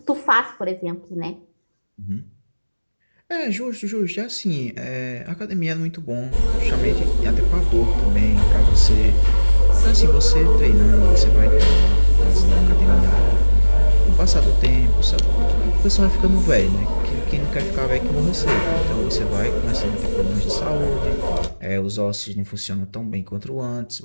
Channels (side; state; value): both; inverted; correlation -1.00